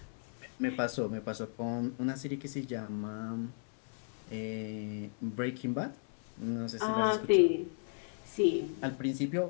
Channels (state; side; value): silent; right; 54 dB below the other